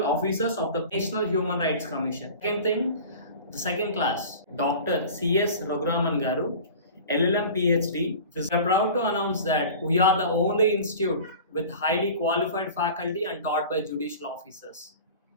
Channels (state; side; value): inverted; both; correlation -0.39